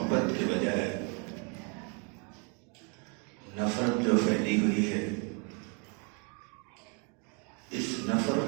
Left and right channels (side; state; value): left; quieter; 35.7 dB